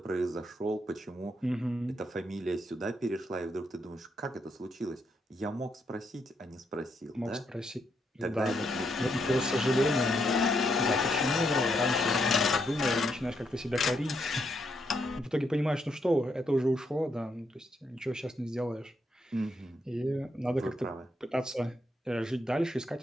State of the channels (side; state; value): both; normal; correlation 0.78